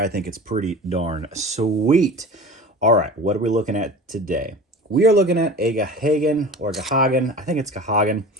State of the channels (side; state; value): both; normal; correlation 0.36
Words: think it's pretty darn sweet. All right, what are we looking at today? We are looking at a Gahagan, I think it's Gahagan,